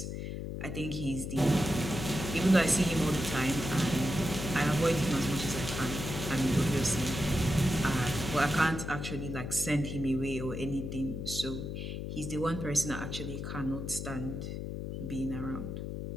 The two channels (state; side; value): noise; left; hum, 5 dB below the sound